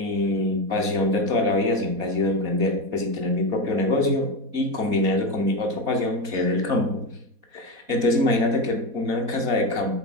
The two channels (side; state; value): left; late; 4.1 ms